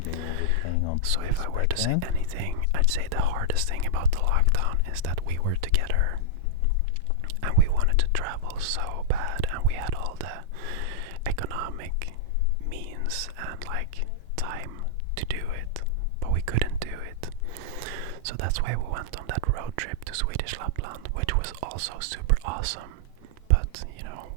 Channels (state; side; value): different; both; correlation -0.03